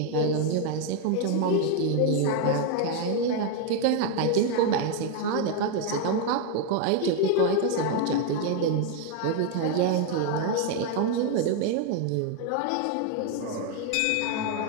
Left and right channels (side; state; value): both; different; correlation 0.01